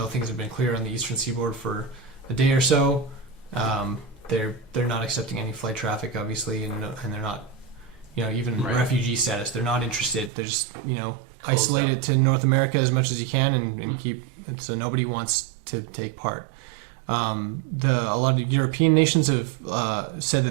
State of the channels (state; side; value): drops out; left; at 10.3 s